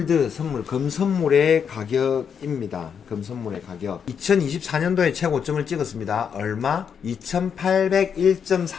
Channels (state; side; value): quieter; right; 7.2 dB